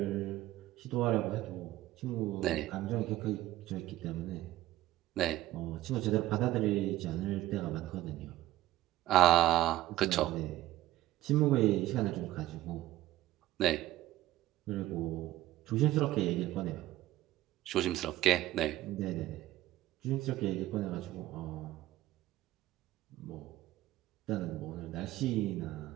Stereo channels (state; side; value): quieter; left; 15.4 dB